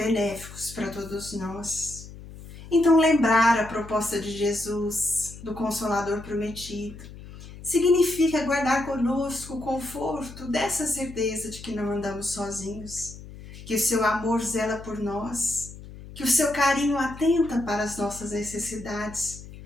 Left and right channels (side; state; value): left; noise; hum, 15 dB below the sound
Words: para todos nós. Então, lembrar a proposta de Jesus, do Consolador prometido, significa guardar conosco o conforto dessa certeza de que não andamos sozinhos, que o seu amor zela por nós, que o seu carinho atenta para as nossas necessidades